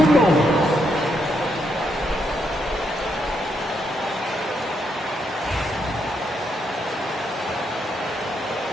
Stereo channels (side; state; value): both; normal; correlation 0.78